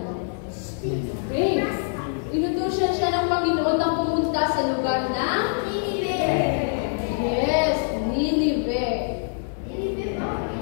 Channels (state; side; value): silent; right; digital silence